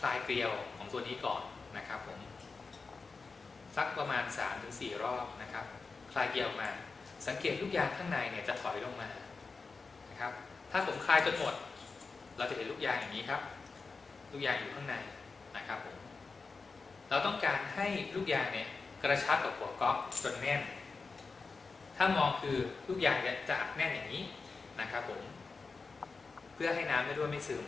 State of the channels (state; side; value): quieter; right; 4.4 dB